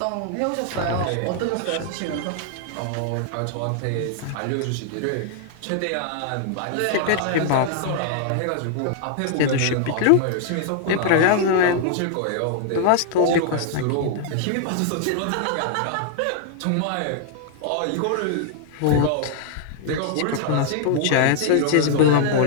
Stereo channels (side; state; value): both; different; correlation 0.00